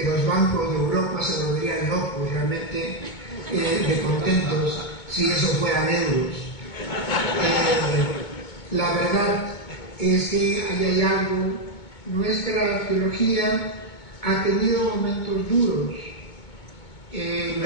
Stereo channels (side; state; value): right; late; 2.2 ms